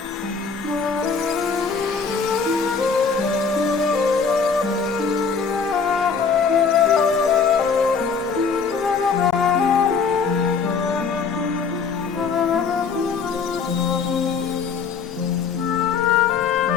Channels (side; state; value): right; quieter; 5.5 dB